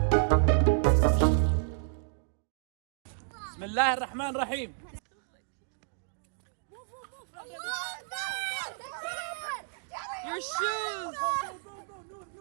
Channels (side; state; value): left; silent; digital silence